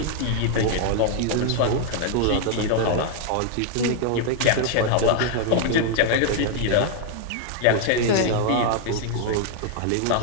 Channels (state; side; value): different; both; correlation 0.00